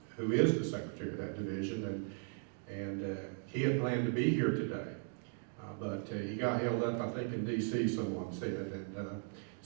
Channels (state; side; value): silent; left; 53 dB below the other